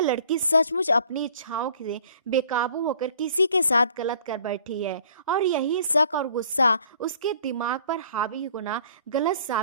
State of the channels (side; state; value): both; inverted; correlation -0.55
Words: लड़की सचमुच अपनी इच्छाओं से बेकाबू होकर किसी के साथ गलत कर बैठी है, और यही शक और गुस्सा उसके दिमाग पर हावी होना गलत